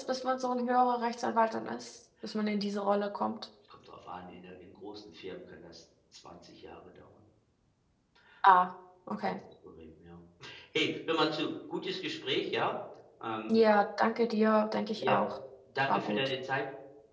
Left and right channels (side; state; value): both; identical; correlation 1.00